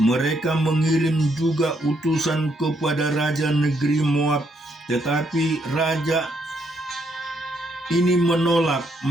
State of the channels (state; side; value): normal; both; correlation 0.74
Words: mengirim juga utusan kepada raja negeri Moab, tetapi raja ini menolak.